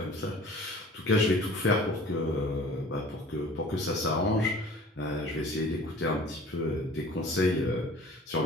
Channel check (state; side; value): normal; both; correlation 0.46